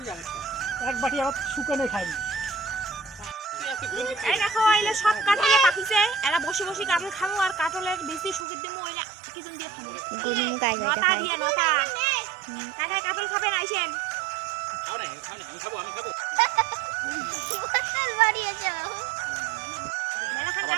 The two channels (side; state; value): left; drops out; at 8.5 s